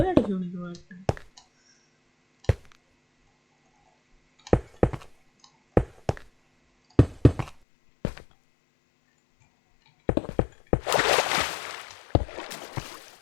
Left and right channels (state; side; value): drops out; right; at 7.6 s